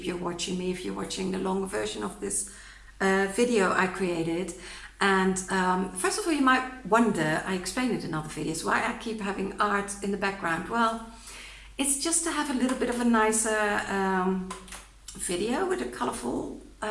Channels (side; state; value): both; identical; correlation 1.00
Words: you're watching me if you're watching the longer version of this video I created. And first of all, you might wonder, I explained it in other videos, why I keep having art in the background. Well, it's just to have a little bit of a nicer video with a colorful